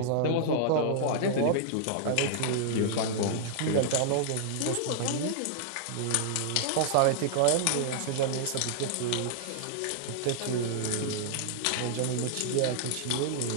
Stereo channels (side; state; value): both; different; correlation -0.01